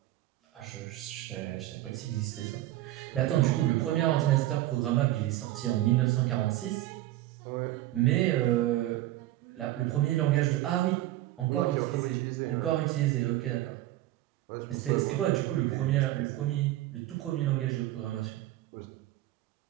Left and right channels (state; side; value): quieter; left; 15.6 dB